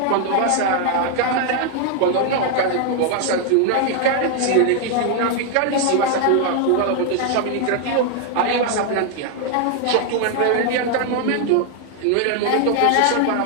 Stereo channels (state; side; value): different; both; correlation 0.00